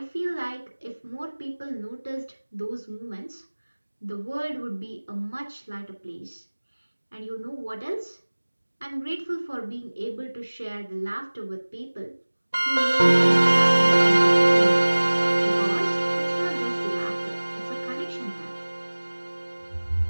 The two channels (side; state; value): both; inverted; correlation -1.00